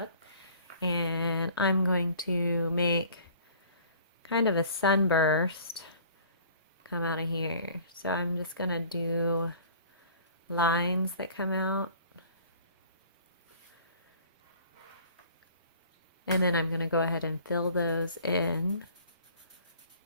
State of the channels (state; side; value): inverted; both; correlation -0.50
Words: And I'm going to make kind of a sunburst come out of here. So I'm just gonna do lines that come out. And then I'm going to go ahead and fill those in